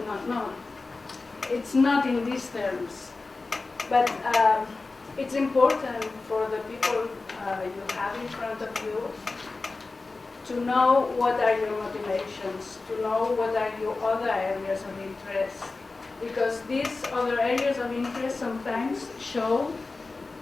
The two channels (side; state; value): right; quieter; 3.7 dB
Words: not. No, it's not in these terms, but it's important for the people you have in front of you to know what are your motivations, to know what are your other areas of interest, because these other areas of interest sometimes show